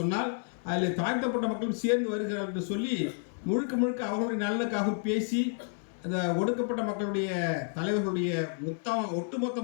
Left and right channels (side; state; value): right; silent; 58 dB below the other